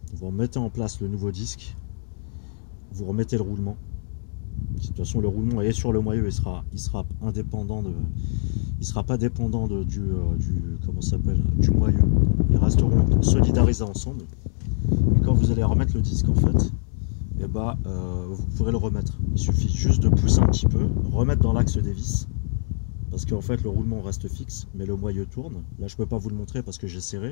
vous remettez en place le nouveau disque, vous remettez le roulement. De toute façon le roulement est sur le moyeu, il sera indépendant il sera pas dépendant du comment ça s'appelle, du moyeu. Ils resteront solidarisés ensemble. Et quand vous allez remettre le disque en fait, vous pourrez le remettre. Il suffit juste de pousser un petit peu, remettre dans l'axe des vis parce qu'en fait le roulement reste fixe, mais le moyeu tourne. Là je peux pas vous le montrer parce que j'ai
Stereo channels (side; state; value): right; silent; 62 dB below the other